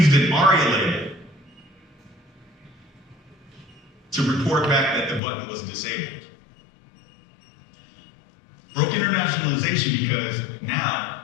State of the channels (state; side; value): drops out; right; at 5.2 s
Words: an ARIA label to report back that the button was disabled. Broke internationalization because